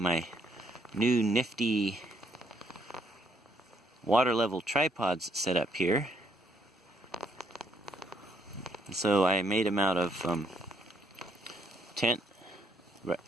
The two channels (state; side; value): normal; both; correlation 0.70